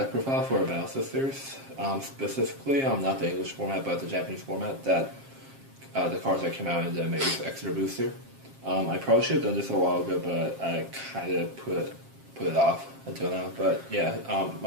profile for Battle Sisters. Specifically, not the English format, but the Japanese format. That the cards that came out in the Maze Extra Booster. I probably should have done this a while ago, but I kind of put it off until now. But yeah,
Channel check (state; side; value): late; left; 7.5 ms